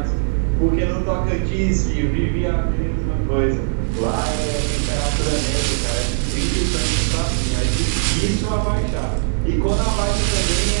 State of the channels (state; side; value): silent; left; digital silence